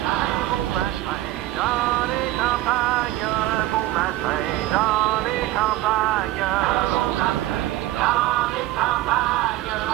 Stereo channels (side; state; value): left; quieter; 16.1 dB